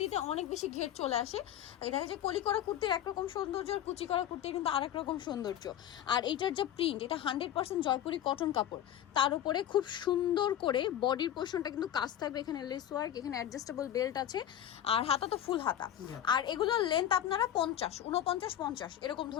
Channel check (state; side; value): quieter; right; 11.1 dB